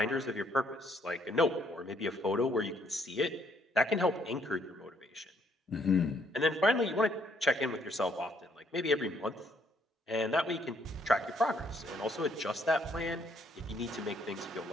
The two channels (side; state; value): both; normal; correlation 0.68